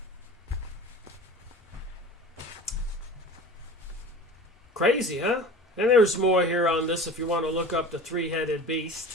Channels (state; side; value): normal; both; correlation 0.38